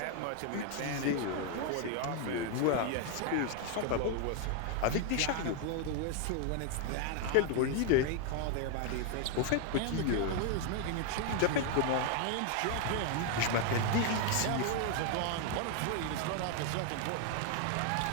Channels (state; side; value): different; both; correlation 0.01